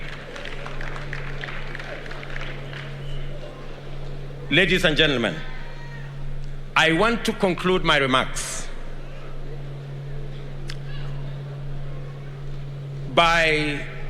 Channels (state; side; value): identical; both; correlation 1.00